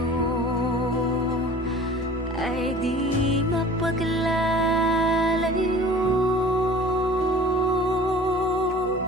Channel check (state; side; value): normal; both; correlation 0.44